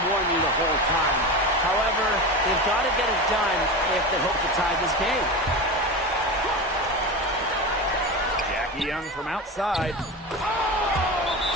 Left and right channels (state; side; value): normal; both; correlation 0.24